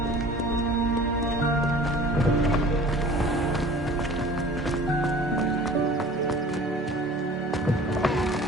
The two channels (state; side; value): normal; both; correlation 0.45